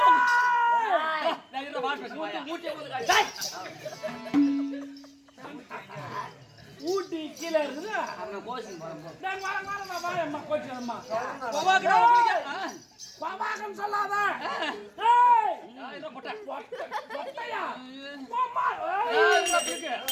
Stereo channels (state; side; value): identical; both; correlation 1.00